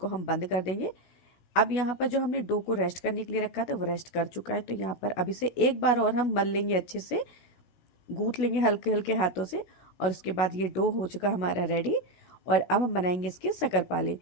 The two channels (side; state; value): right; late; 16 ms